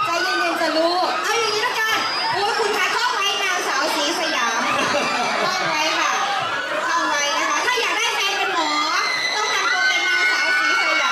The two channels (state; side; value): identical; both; correlation 1.00